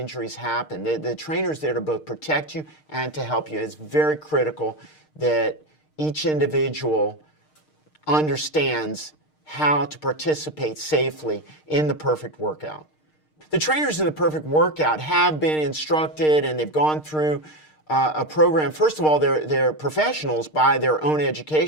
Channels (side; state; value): right; late; 6.5 ms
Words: happen. The trainer's there to both protect you and to help you. It's very critical that each individual understands how to participate safely in the perfect workout. The trainers in the perfect workout have been instructed and they've gone through a program. First of all, they're professionals by their own